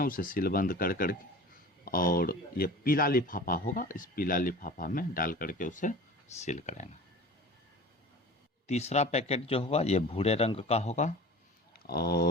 उसे सीलबंद कर करके और ये पीला लिफाफा होगा, इस पीला लिफाफा में डाल करके उसे सील करेंगे। तीसरा पैकेट जो होगा ये भूरे रंग का होगा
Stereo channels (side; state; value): both; normal; correlation 0.39